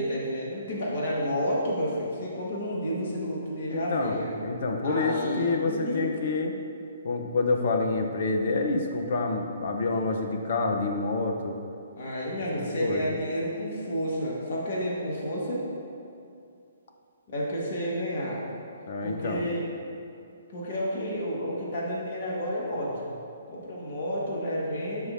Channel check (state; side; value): inverted; both; correlation -0.62